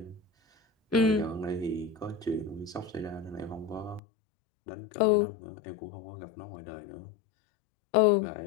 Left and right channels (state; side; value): drops out; right; at 4.0 s